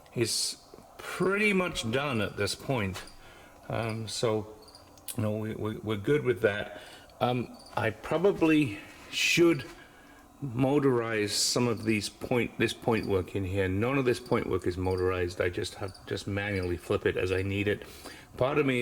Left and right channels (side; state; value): both; identical; correlation 1.00